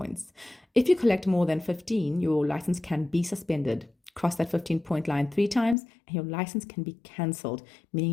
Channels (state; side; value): drops out; right; at 5.8 s